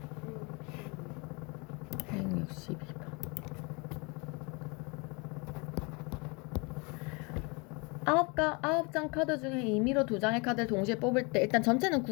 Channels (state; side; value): quieter; right; 29.8 dB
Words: 162번 9장 카드 중에 임의로 2장의 카드를 동시에 뽑을 때 일단 전체는